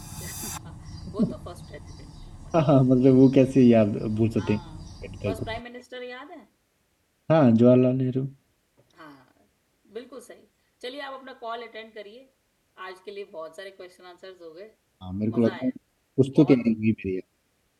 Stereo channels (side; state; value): both; identical; correlation 1.00